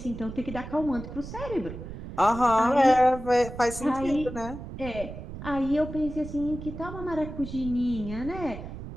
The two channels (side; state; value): right; noise; rumble, 10 dB below the sound